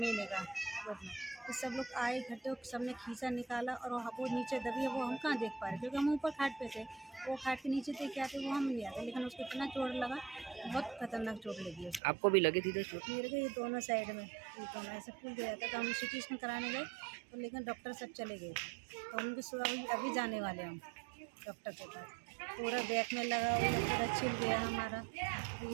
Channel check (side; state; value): left; drops out; at 12.0 s